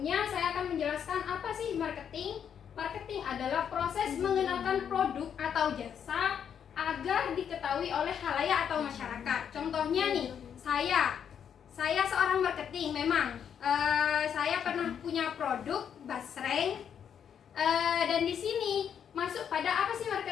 saya akan menjelaskan apa sih marketing. Marketing adalah proses mengenalkan produk atau jasa agar diketahui oleh khalayak atau masyarakat. Contohnya nih, saya seorang marketing memang. Saya pernah punya produk basreng, dan di sini masuk pada apa sih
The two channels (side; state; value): right; quieter; 8.2 dB